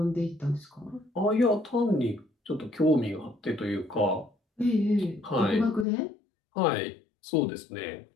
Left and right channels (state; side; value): drops out; right; at 5.9 s